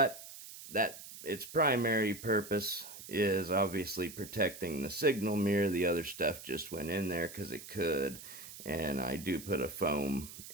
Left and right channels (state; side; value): noise; right; hiss, 14 dB below the sound